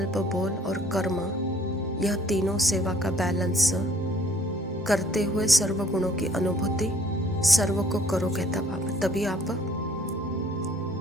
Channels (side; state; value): both; normal; correlation 0.58